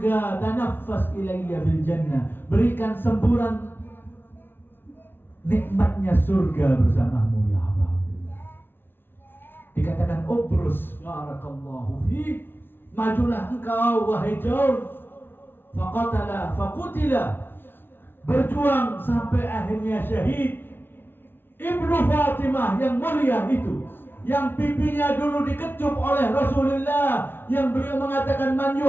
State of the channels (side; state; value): right; late; 0.10 ms